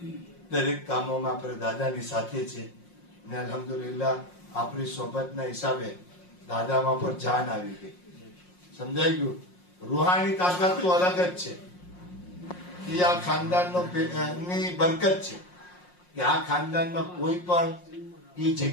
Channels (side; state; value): right; late; 5.6 ms